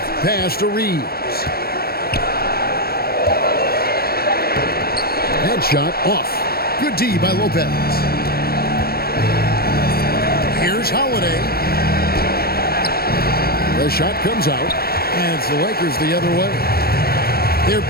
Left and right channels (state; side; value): late; right; 0.45 ms